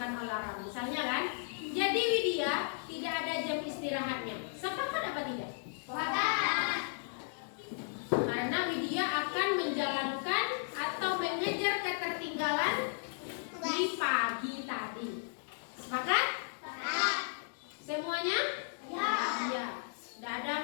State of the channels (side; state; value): right; silent; digital silence